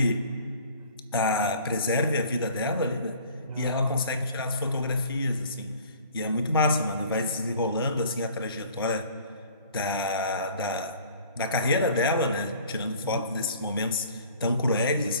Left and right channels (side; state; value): both; inverted; correlation -0.50